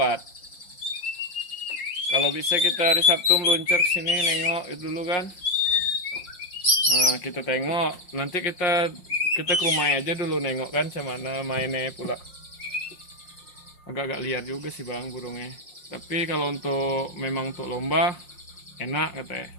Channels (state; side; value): late; right; 5.6 ms